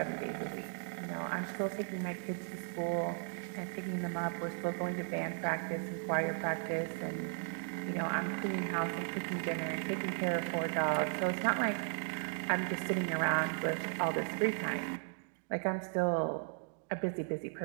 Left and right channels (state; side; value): silent; left; 54 dB below the other